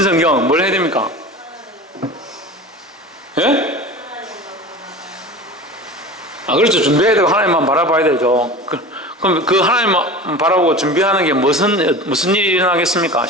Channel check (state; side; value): normal; both; correlation 0.34